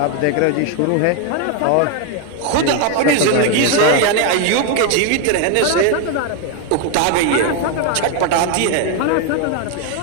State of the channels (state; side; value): different; both; correlation 0.01